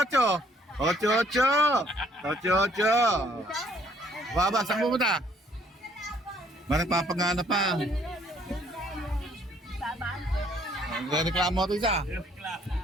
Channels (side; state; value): both; normal; correlation 0.63